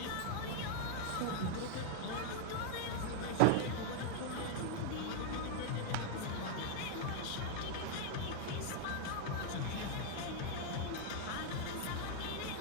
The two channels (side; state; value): both; different; correlation 0.00